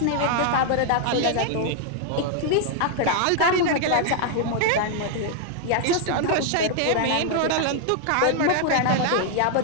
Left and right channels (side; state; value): both; different; correlation 0.00